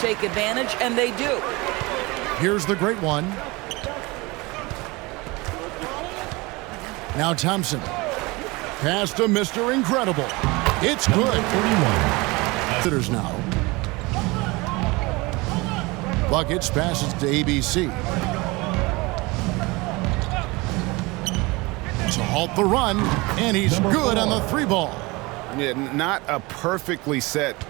advantage, and they do. Here's the great one. Now Thompson. Pass to Mr. Incredible. It's good. 31. Visitors now. Buckets passes to ABC. To halt the run, and he's good on the three ball. Yeah, not a perfectly set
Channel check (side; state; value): left; quieter; 24.1 dB